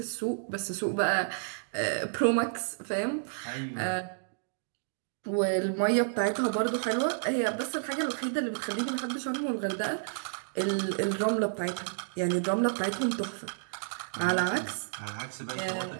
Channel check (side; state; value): left; silent; digital silence